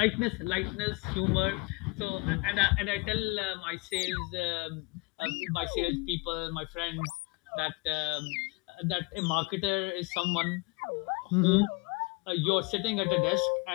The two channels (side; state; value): right; quieter; 27.0 dB